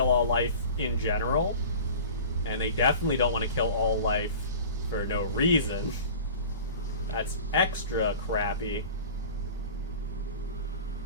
all life in general, and they definitely don't want to kill all life for no reason. That's extra crappy.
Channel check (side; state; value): both; inverted; correlation -0.39